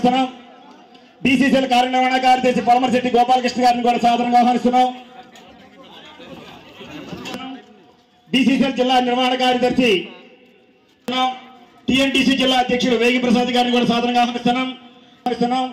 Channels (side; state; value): both; identical; correlation 1.00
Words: బీసీసీఎల్ కార్యనిర్వహణ కార్యదర్శి పొలమరశెట్టి గోపాలకృష్ణ గారిని కూడా సాధారణంగా ఆహ్వానిస్తున్నాం. బీసీసీఎల్ జిల్లా నిర్వహణ కార్యదర్శి టీఎన్టీసీ జిల్లా అధ్యక్షుడు వేగి ప్రసాద్ గారిని కూడా సాధారణంగా ఆహ్వానిస్తున్నాం.